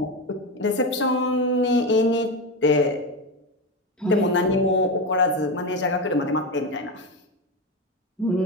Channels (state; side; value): normal; both; correlation 0.17